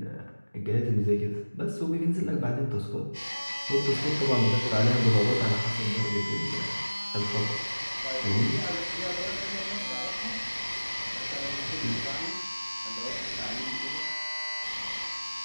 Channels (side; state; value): both; inverted; correlation -1.00